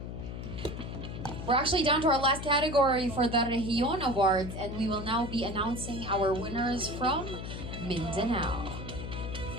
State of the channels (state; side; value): noise; left; hum, 7 dB below the sound